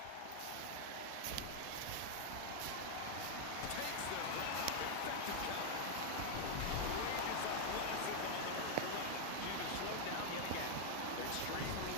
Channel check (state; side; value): different; both; correlation 0.00